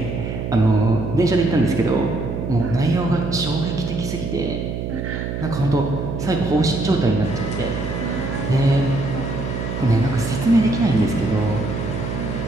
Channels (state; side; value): noise; right; hum, 4 dB below the sound